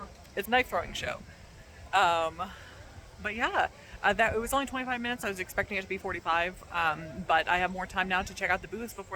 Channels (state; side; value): identical; both; correlation 1.00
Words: it's a knife throwing show. But yeah, it was only 25 minutes. I was expecting it to be 45, but I have more time now to check out the booths